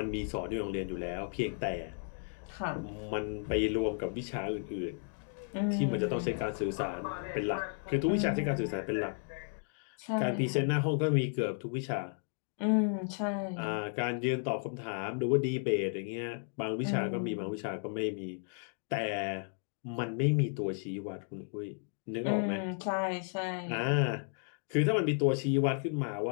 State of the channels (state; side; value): silent; right; 55 dB below the other